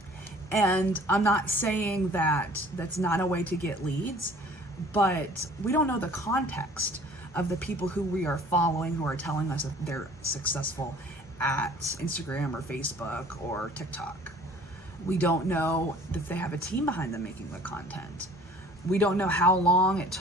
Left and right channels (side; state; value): both; normal; correlation 0.51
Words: And I'm not saying that that's not a way to get leads, but we don't know the context of the people who we are following who are telling us that they're successful at Instagram or Facebook or TikTok. We don't know if they have a team behind them making the content. We don't know how long it